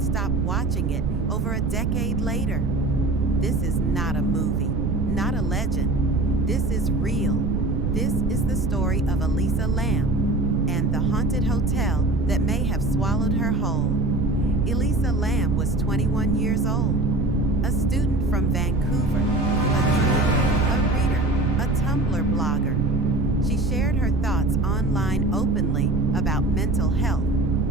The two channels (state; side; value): noise; right; rumble, 3 dB below the sound